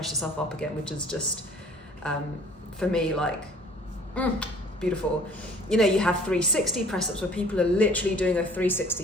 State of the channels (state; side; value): normal; both; correlation 0.52